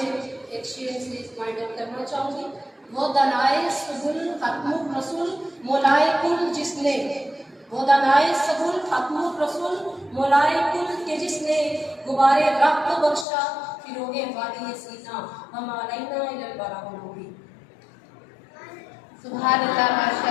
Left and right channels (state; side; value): drops out; right; at 13.2 s